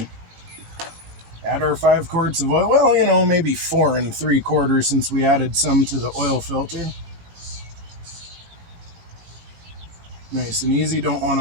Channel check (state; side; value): late; left; 18 ms